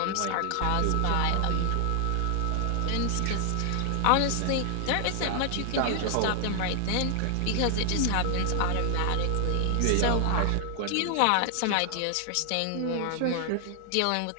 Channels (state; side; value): different; both; correlation 0.00